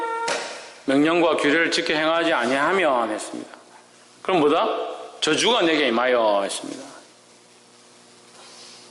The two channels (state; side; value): identical; both; correlation 1.00